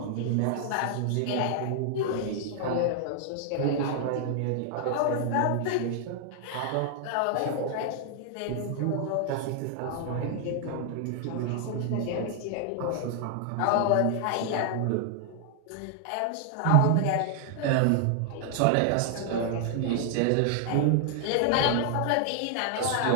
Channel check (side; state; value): both; different; correlation 0.00